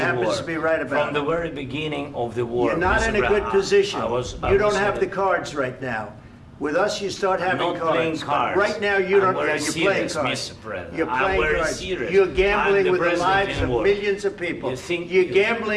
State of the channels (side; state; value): both; identical; correlation 1.00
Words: happens to be right about it. From the very beginning of the war. You're not in a good position. You don't have the cards right now. With us, you start having cards. Right now, you don't. You're playing cards. You're playing cards. You're gambling with the lives of millions of people. You're